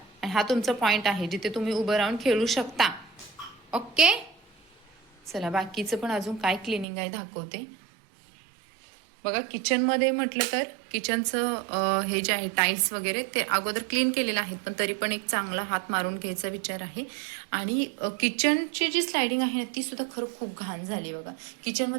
आणि हा तुमचा पॉईंट आहे जिथे तुम्ही उभं राहून खेळू शकता. ओके, चला बाकीचं पण अजून काय क्लिनिंग आहे दाखवते. बघा, किचनमध्ये म्हटलं तर किचनचं हे जे आहे टाईल्स वगैरे ते अगोदर क्लीन केलेलं आहेत, पण तरी पण एक चांगला हात मारून घ्यायचा विचार आहे. आणि किचनची जी स्लायडिंग आहे ना ती सुद्धा खरं खूप घाण झाली बघा.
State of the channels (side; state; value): left; drops out; at 6.9 s